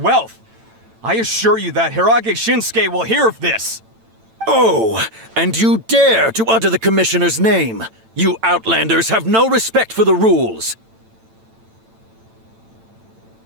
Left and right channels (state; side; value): late; left; 9.0 ms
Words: wealth. I assure you that Hirage Shinsuke will hear of this. Oh, and you dare to utter the Commissioner's name. You Outlanders have no respect for the rules.